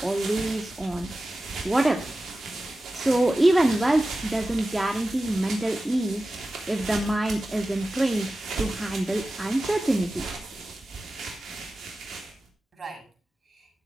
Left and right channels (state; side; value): normal; both; correlation 0.95